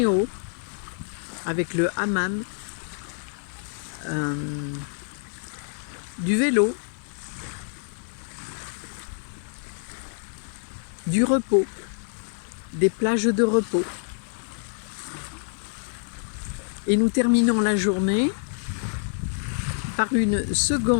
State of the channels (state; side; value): silent; right; digital silence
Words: avec le hammam, du vélo, du repos, des plages de repos. Et nous terminons la journée par une